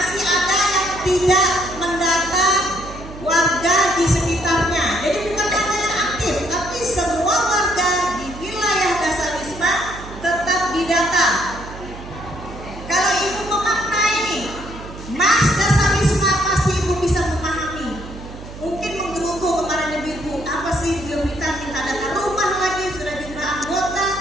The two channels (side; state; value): right; noise; hum, 13 dB below the sound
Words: ada yang tidak mendata warga di sekitarnya. Jadi bukan hanya yang aktif, tapi semua warga di wilayah Dasar Wisma tetap didata. Kalau Ibu memaknai Mas Dasar Wisma, pasti Ibu bisa memahami. Mungkin menggerutu kemarin Ibu, apa sih dia minta data rumah lagi, sudah jumlah anggota.